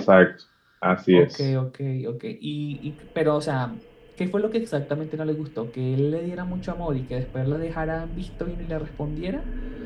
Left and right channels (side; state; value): both; identical; correlation 1.00